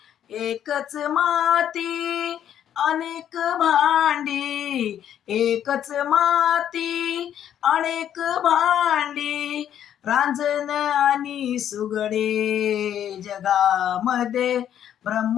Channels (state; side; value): quieter; right; 10.1 dB